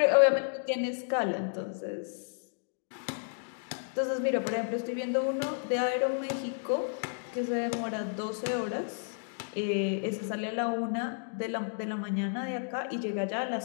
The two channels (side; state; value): right; silent; digital silence